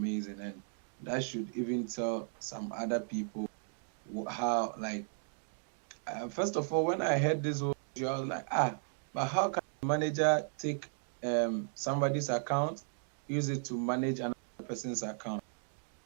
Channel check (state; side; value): silent; left; digital silence